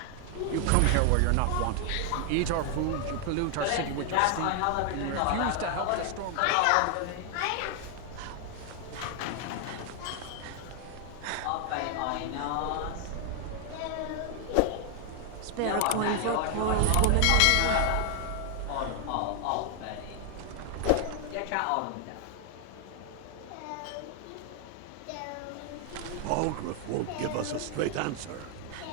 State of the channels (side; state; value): both; different; correlation 0.00